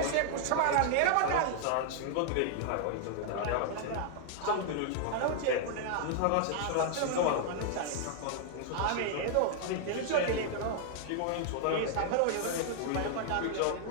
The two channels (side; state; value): both; different; correlation 0.00